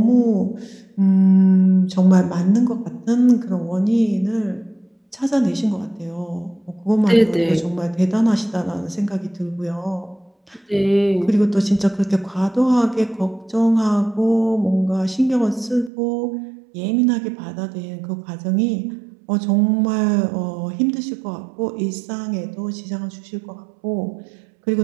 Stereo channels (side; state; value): left; drops out; at 15.9 s